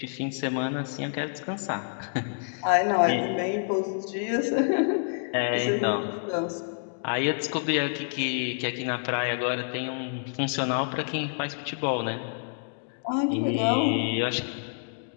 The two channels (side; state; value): right; silent; digital silence